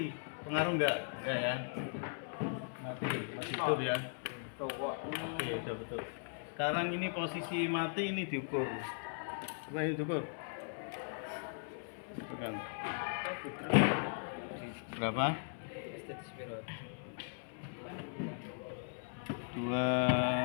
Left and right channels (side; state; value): right; silent; 52 dB below the other